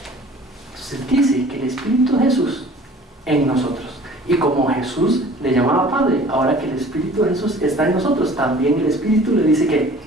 Entonces dice que el Espíritu de Jesús en nosotros. Y como Jesús le llamaba Padre, ahora que el Espíritu de Jesús está en nosotros, también el Espíritu le dice que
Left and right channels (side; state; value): both; normal; correlation 0.48